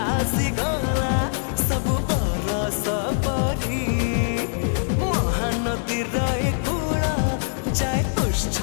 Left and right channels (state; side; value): silent; right; digital silence